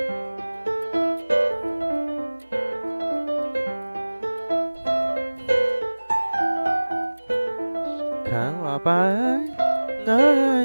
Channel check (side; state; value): both; inverted; correlation -1.00